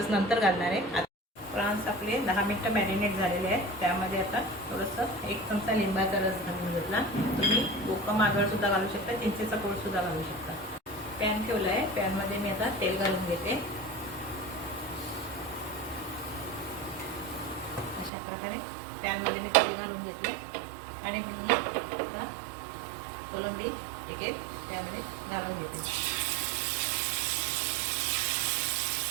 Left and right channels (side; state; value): left; drops out; at 18.1 s